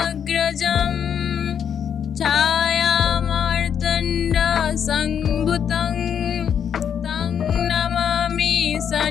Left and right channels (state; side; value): quieter; right; 8.2 dB